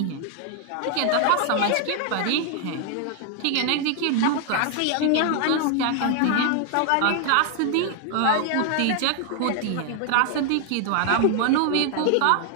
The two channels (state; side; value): different; both; correlation 0.00